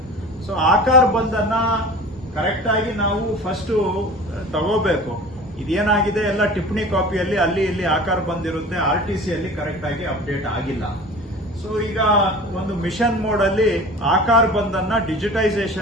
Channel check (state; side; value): normal; both; correlation 0.39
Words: ಸೊ ಆಕಾರ ಬಂದನ್ನ ಕರೆಕ್ಟ್ ಆಗಿ ನಾವು ಫಸ್ಟ್ ತಗೋಬೇಕು. ಇದೇನಾಗಿದೆ, ಎಲ್ಲ ಟಿಪ್ಪಣಿ ಕಾಪಿಯಲ್ಲಿ ಅಲ್ಲಿ ಇಲ್ಲಿ ಆಕಾರ ಬಂದಿರುತ್ತೆ, RTC ಅಲ್ಲಿ ಕರೆಕ್ಟ್ ಆಗಿ ಅಪ್ಡೇಟ್ ಆಗಿಲ್ಲ. ಸೊ ಈಗ ಒಂದು ಮಿಷನ್ ಮೋಡ್ ಅಲ್ಲಿ ಆಕಾರ ಬಂದನ್ನ